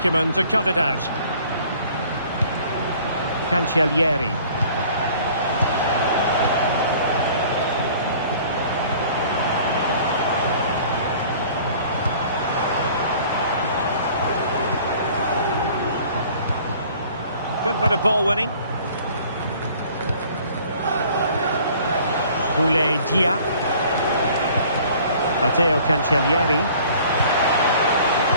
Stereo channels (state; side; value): inverted; both; correlation -0.52